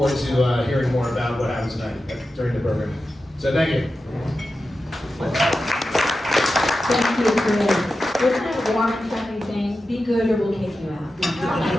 to hearing more about what happens tonight during the program. So thank you. Thank you, Chris. Isn't it a warm and friendly thing? Be good or we'll kick you out.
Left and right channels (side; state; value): both; normal; correlation 0.92